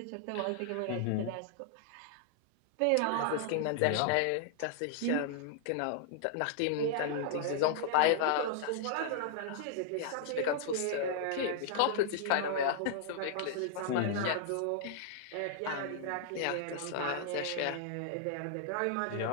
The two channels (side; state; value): both; different; correlation -0.01